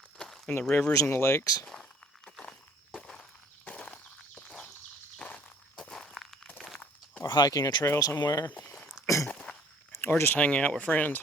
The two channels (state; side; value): normal; both; correlation 0.56